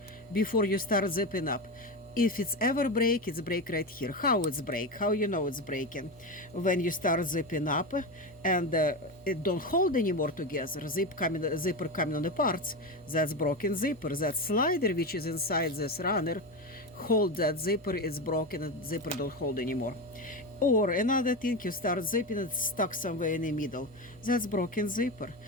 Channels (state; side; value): normal; both; correlation 0.18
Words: before you start zipping up. If it's ever break, it's break right here. How it's break? How you know it's breaking? When you start zipping up and it don't hold anymore together. Zipper coming on the parts. That's broken zipper. That slider which is inside this runner hold that zipper. It's broken and zipper don't hold anymore. Or another thing, you start zipping, it's stuck somewhere in the middle. That's broken zipper.